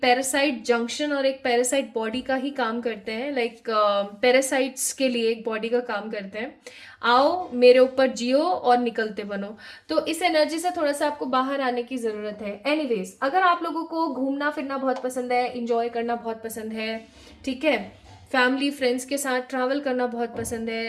पैरासाइट जंक्शन और एक पैरासाइट बॉडी का ही काम करते हैं। लाइक पैरासाइट्स के लिए एक बॉडी का काम करते हैं। आओ मेरे ऊपर जियो और निकलते बनो। तो इस एनर्जी से थोड़ा सा आपको बाहर आने की ज़रूरत है। एनीवेज, अगर आप लोगों को घूमना फिरना बहुत पसंद है, इंजॉय करना बहुत पसंद है, ठीक है, फैमिली फ्रेंड्स के साथ ट्रैवल करना बहुत पसंद है,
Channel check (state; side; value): identical; both; correlation 1.00